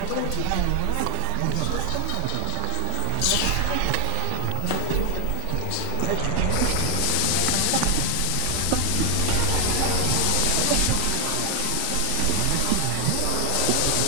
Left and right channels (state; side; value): different; both; correlation 0.00